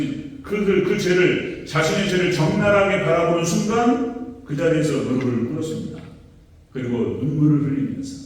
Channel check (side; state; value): both; identical; correlation 1.00